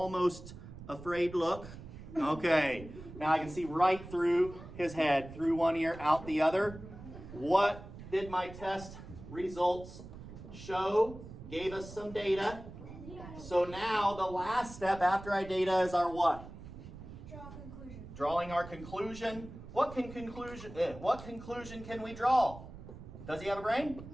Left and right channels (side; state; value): right; noise; rumble, 14 dB below the sound